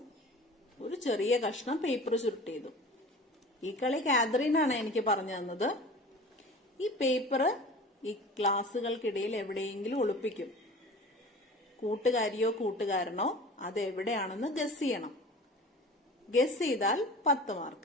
ഒരു ചെറിയ കഷ്ണം പേപ്പർ ചുരുട്ടിയതും. ഈ കളി കാതറീനാണ് എനിക്ക് പറഞ്ഞു തന്നത്. ഈ പേപ്പർ ഈ ഗ്ലാസുകൾക്കിടയിൽ എവിടെയെങ്കിലും ഒളിപ്പിക്കും. കൂട്ടുകാരിയോ കൂട്ടുകാരനോ അത് എവിടെയാണെന്ന് ഗസ് ചെയ്യണം. ഗസ് ചെയ്താൽ 10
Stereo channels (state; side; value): normal; both; correlation 0.39